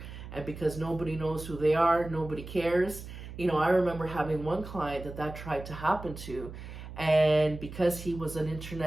And because nobody knows who they are, nobody cares. I remember having one client that tried to happen to. And because he was an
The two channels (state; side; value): noise; right; hum, 12 dB below the sound